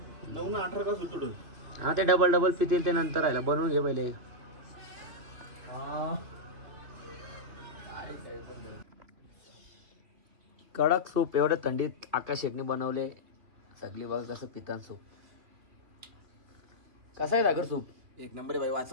ना 18 ग्लास होतो. हा ते डबल पितील ते नंतर राहिला. बनवून घे पहिले. कडक सूप एवढ्या थंडीत आकाश शेटने बनवले. सगळी बघा कसं पितान सूप. कसं आहे सागर सूप? एक नंबर बाई.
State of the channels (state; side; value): late; left; 3.0 ms